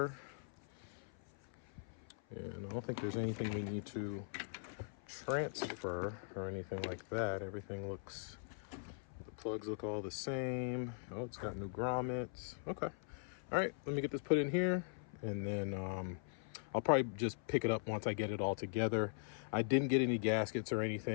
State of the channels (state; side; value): silent; right; 50 dB below the other